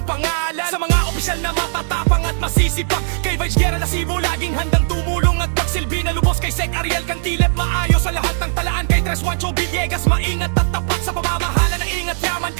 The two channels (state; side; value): silent; left; digital silence